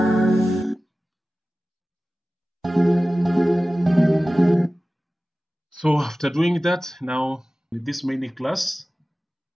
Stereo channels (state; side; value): normal; both; correlation 0.96